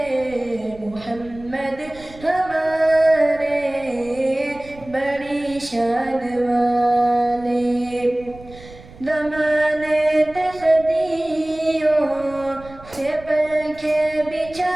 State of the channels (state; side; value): noise; right; rumble, 20 dB below the sound